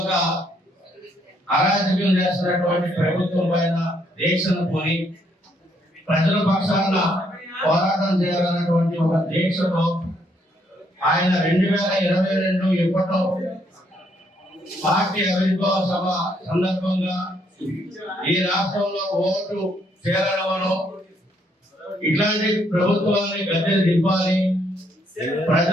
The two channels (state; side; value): normal; both; correlation 0.71